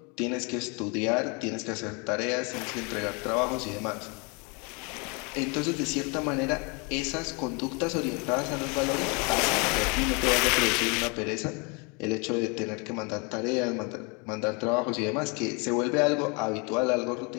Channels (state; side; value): quieter; right; 31.6 dB